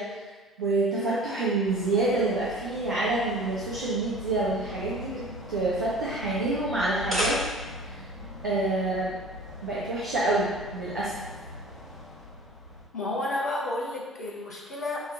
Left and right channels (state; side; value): normal; both; correlation 0.43